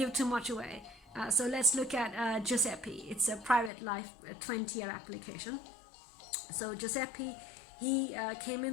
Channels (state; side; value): drops out; right; at 3.7 s